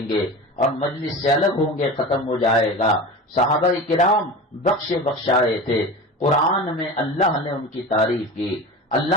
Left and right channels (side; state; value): both; normal; correlation 0.31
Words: گے، اور مجلس سے الگ ہوں گے ختم ہو جائے گا. صحابہ کرام بخشائے تھے. قرآن میں اللہ نے ان کی تعریف کی.